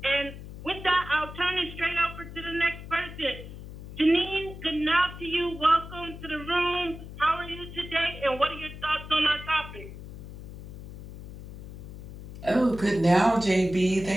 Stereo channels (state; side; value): noise; left; hum, 13 dB below the sound